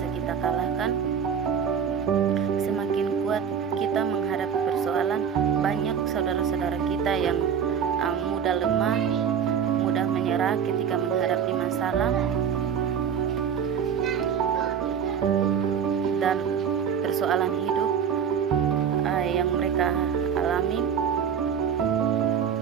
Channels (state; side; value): quieter; left; 7.6 dB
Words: kita kalahkan, semakin kuat kita menghadapi persoalan. Banyak saudara-saudara kita yang mudah lemah, mudah menyerah ketika menghadapi masalah dan persoalan hidup yang mereka alami.